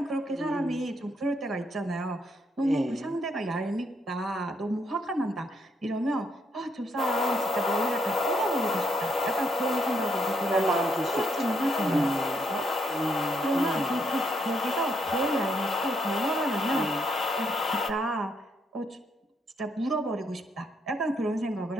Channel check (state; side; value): normal; both; correlation 0.75